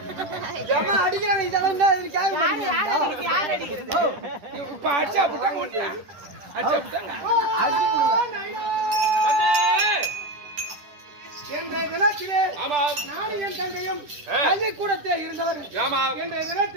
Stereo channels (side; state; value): left; late; 10 ms